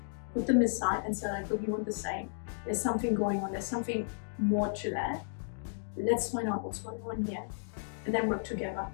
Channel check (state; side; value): silent; right; digital silence